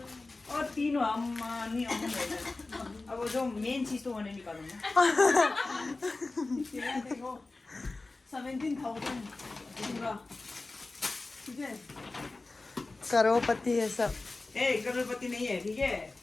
और तीनों हम नहीं हम अब जो मेन चीज तो होने निकालूँ ना तेरा देखो 17,000 पूरा ठीक है करोड़पति है सब. ए करोड़पति नहीं है ठीक है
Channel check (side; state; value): right; quieter; 3.4 dB